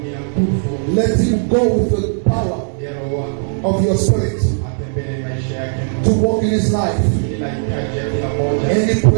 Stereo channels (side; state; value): left; silent; digital silence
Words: Let him go with the power of your spirit to walk in his life. Any